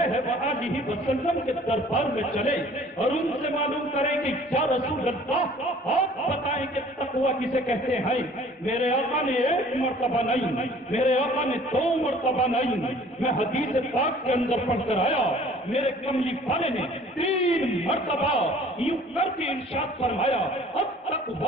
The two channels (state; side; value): normal; both; correlation 0.52